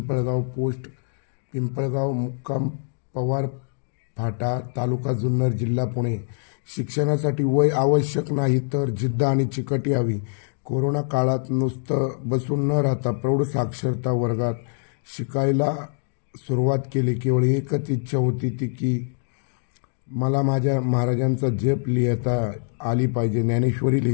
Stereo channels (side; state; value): right; silent; digital silence